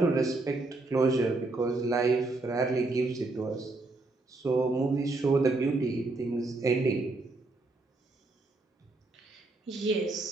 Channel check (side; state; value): left; quieter; 3.2 dB